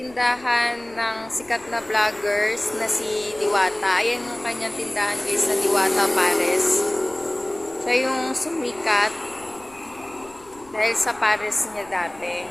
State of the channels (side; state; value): left; noise; rumble, 26 dB below the sound